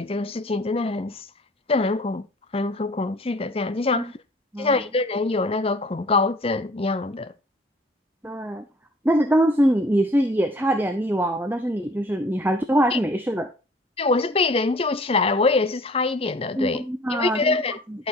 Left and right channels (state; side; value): normal; both; correlation 0.52